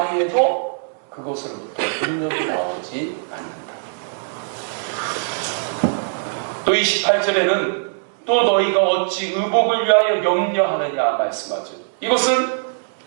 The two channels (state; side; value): silent; left; digital silence